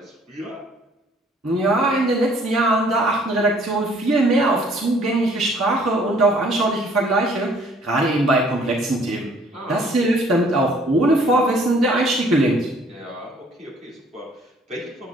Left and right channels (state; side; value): normal; both; correlation 0.59